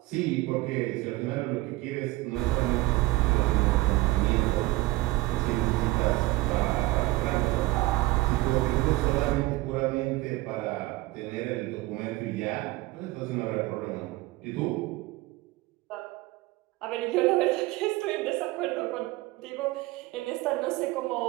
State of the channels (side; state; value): left; quieter; 19.5 dB